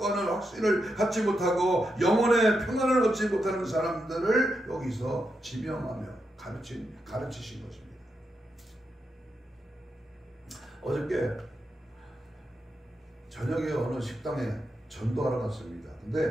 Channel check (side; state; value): both; normal; correlation 0.84